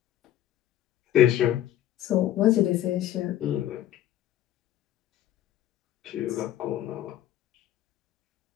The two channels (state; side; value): quieter; right; 12.3 dB